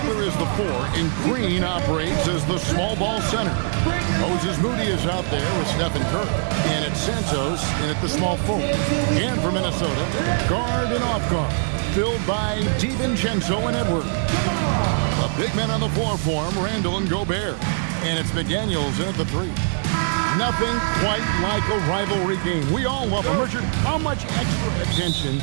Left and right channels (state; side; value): silent; left; digital silence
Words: is the 4, and Green operates as the small ball center. Moses Moody is out there with Stephen Curry. And it's Santos in at the small forward. And for Minnesota, guard and off guard, filled by DiVincenzo and Edwards. The big men on the floor for him, Randall and Gobert. And it's McDaniels in at the 3. Nothing quite like a rivalry game. We all love them. Richard, how much extra attention